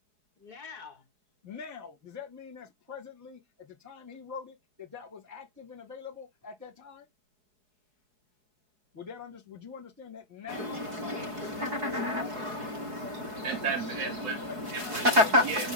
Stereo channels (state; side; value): late; left; 4.7 ms